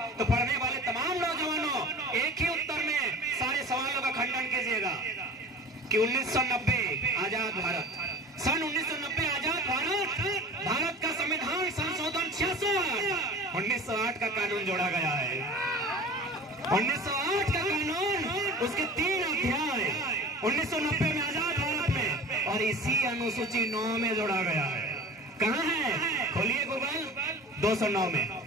तो पढ़ने वाले तमाम नौजवानों एक ही उत्तर में सारे सवालों का खंडन कीजिएगा कि 1990 आजाद भारत, सन 1990 आजाद भारत, भारत का संविधान संशोधन 66 1908 का कानून जोड़ा गया है। 1908 का कानून, उसके 3 अध्याय 1990 में आजाद भारत में, और इसी अनुसूची 9 में जोड़ा गया है। कहाँ है? खोलिए गूगल। 209 में,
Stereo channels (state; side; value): normal; both; correlation 0.39